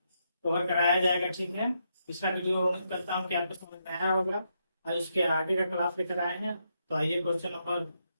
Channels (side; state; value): both; inverted; correlation -0.80